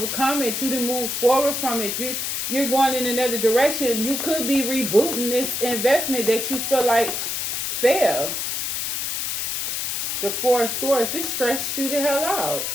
it. You done moved forward from it. You're going in another direction. You could be rebooting this investment that you feel like failed. The Four of Swords, this stressed you the hell out.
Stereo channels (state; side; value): noise; left; hiss, 1 dB below the sound